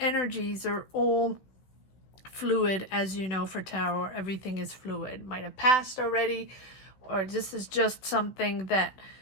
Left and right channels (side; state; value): right; late; 15 ms